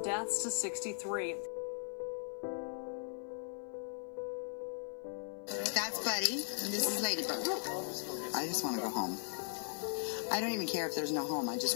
deaths to 63. That's Buddy, and this is Ladybug. I just want to go home. I don't even care if there's no home. I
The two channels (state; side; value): silent; right; 52 dB below the other